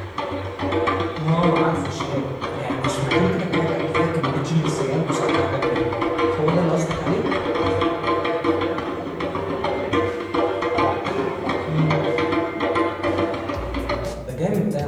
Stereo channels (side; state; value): both; identical; correlation 1.00